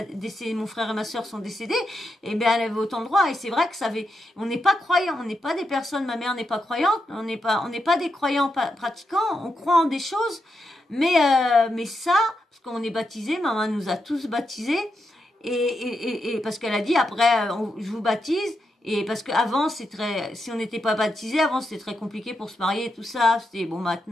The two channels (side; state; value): both; normal; correlation 0.84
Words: mon frère et ma soeur sont décédés, et bien elle avait autant le droit. Et c'est vrai que on n'est pas croyants, on n'est pas des personnes, ma mère n'est pas croyante, on n'est pas des croyants pratiquants, on croit en des choses, mais ça, parce qu'on est baptisés, maman nous a tous baptisés, et parce qu'elle a dit après, je vous baptise. Et parce qu'avant, si on n'était pas baptisé, avant c'était très compliqué pour se marier et tout ça. C'était bon,